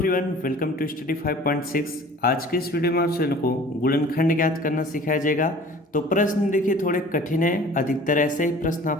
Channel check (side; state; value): both; normal; correlation 0.47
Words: welcome to study 5.6। आज के इस वीडियो में आप सभी को गुणनखंड ज्ञात करना सिखाया जाएगा। तो प्रश्न देखिए थोड़े कठिन है, अधिकतर ऐसे ही प्रश्न